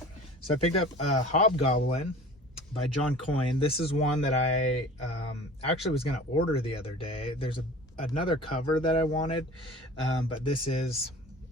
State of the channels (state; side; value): normal; both; correlation 0.42